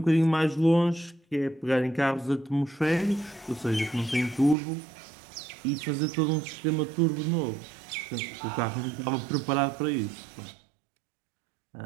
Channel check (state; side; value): drops out; left; at 4.5 s